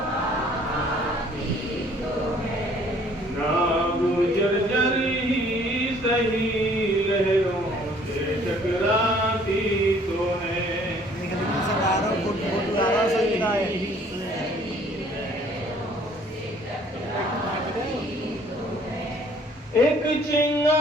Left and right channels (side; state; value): both; normal; correlation 0.57